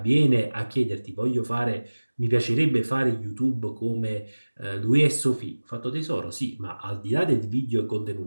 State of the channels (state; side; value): inverted; both; correlation -1.00